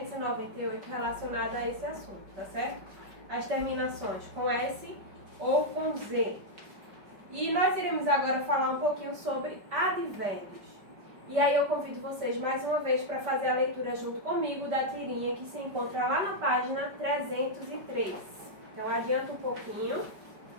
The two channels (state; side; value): late; left; 5.2 ms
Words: relacionada a esse assunto, tá certo? As terminações com S ou com Z. E nós iremos agora falar um pouquinho sobre advérbios. E aí eu convido vocês mais uma vez para fazer a leitura junto comigo da tirinha que se encontra lá na página 303. Então adianta um pouquinho